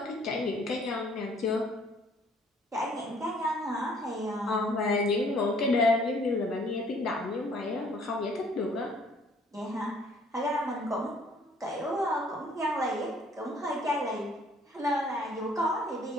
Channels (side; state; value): both; normal; correlation 0.59